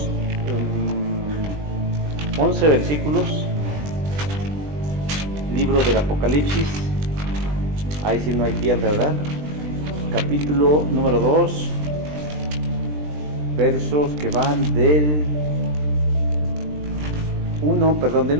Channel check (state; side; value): late; left; 20 ms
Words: 11 versículos, libro del Apocalipsis, ahí sí no hay pierde, ¿verdad? Capítulo número 2, versos que van del 1